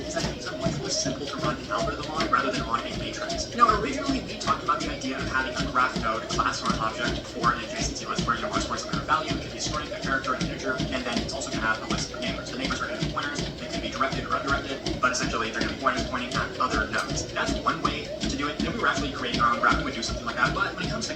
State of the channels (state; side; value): identical; both; correlation 1.00